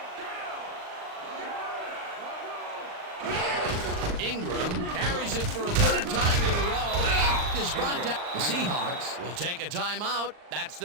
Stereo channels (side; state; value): left; late; 39 ms